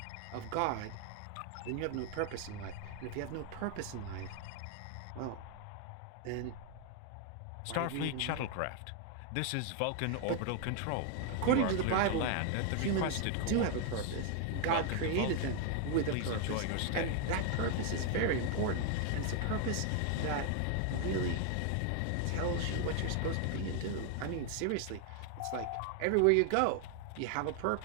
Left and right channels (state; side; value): different; both; correlation 0.00